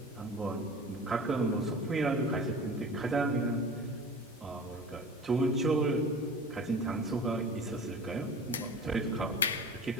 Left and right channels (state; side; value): normal; both; correlation 0.38